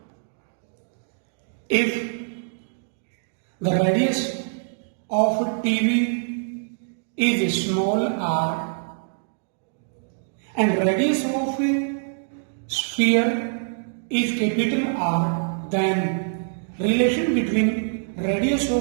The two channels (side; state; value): left; silent; digital silence